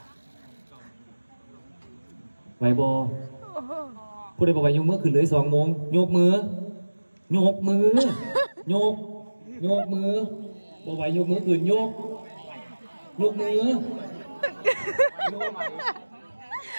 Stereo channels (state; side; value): inverted; both; correlation -1.00